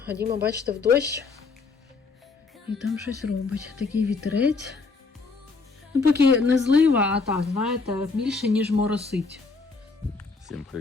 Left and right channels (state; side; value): quieter; right; 4.2 dB